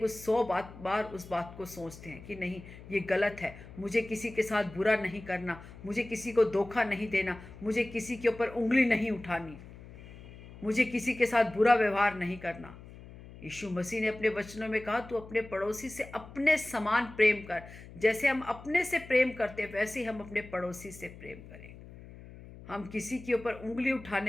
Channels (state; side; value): noise; left; hum, 17 dB below the sound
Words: उस 100 बार उस बात को सोचते हैं कि नहीं, ये गलत है, मुझे किसी के साथ बुरा नहीं करना, मुझे किसी को धोखा नहीं देना, मुझे किसी के ऊपर उंगली नहीं उठानी, मुझे किसी के साथ बुरा व्यवहार नहीं करना। यीशु मसीह ने अपने वचनों में कहा, तू अपने पड़ोसी से अपने समान प्रेम कर। जैसे हम अपने से प्रेम करते हैं वैसे ही हम अपने पड़ोसी से प्रेम करें। हम किसी के ऊपर उंगली